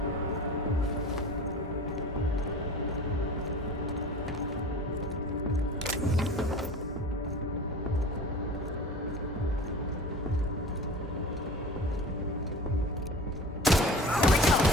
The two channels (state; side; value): normal; both; correlation 0.37